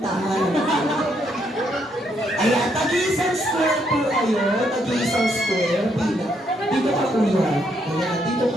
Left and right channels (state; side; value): normal; both; correlation 0.74